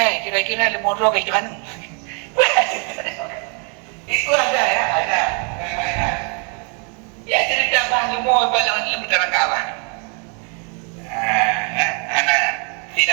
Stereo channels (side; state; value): left; quieter; 37.5 dB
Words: Kira-kira lemodro kayak mana? Itu ada ya, ada. Ya cerita bahan lemur balang lembaran kawan.